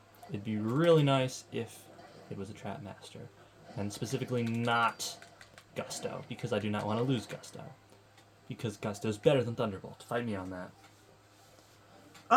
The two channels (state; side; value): identical; both; correlation 1.00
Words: it'd be really nice if it was a Trap Master. And specifically not Gusto, because I do not want to lose Gusto. Because Gusto's better than Thunderbolt. Fight me on that.